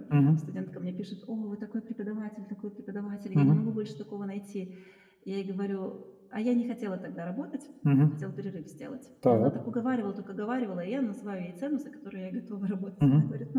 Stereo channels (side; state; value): both; identical; correlation 1.00